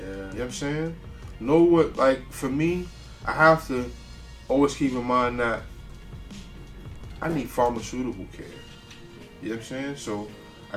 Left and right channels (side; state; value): both; identical; correlation 1.00